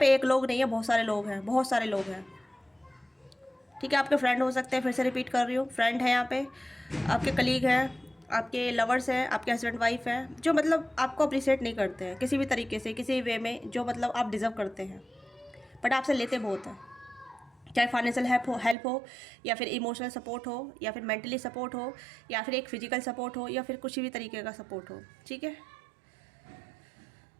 एक लोग नहीं है, बहुत सारे लोग हैं, बहुत सारे लोग हैं, ठीक है। आपके फ्रेंड हो सकते हैं, फिर से रिपीट कर रही हूँ, फ्रेंड है यहाँ पे, आपके कलीग हैं, आपके लवर्स हैं, आपके हस्बैंड वाइफ हैं, जो मतलब आपको अप्रिशिएट नहीं करते हैं किसी भी तरीके से, किसी वे में, जो मतलब आप डिज़र्व करते हैं, बट आपसे लेते बहुत हैं। चाहे फाइनेंशियल हेल्प हो, या फिर इमोशनल सपोर्ट हो, या फिर मेंटली सपोर्ट हो, या फिर एक फिजिकल सपोर्ट हो, या फिर कुछ भी तरीके का सपोर्ट हो, ठीक है।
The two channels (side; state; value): left; drops out; at 18.8 s